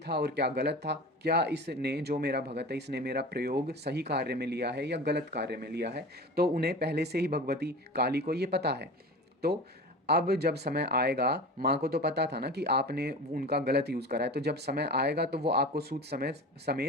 और क्या गलत था, क्या इसने जो मेरा भगत है इसने मेरा प्रयोग सही कार्य में लिया है या गलत कार्य में लिया है। तो उन्हें पहले से ही भगवती काली को ये पता है। तो अब जब समय आएगा, माँ को तो पता था ना कि आपने उनका गलत यूज़ करा है, तो जब समय आएगा तो वो आपको सूद समय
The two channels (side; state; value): both; normal; correlation 0.33